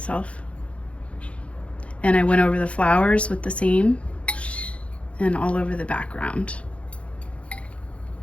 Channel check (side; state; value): right; late; 0.062 ms